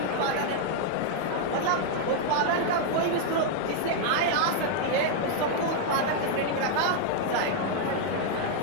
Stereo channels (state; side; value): different; both; correlation 0.00